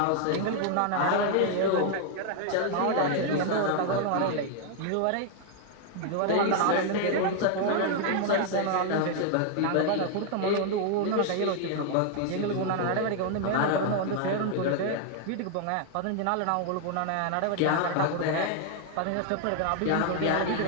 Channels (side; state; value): both; different; correlation 0.00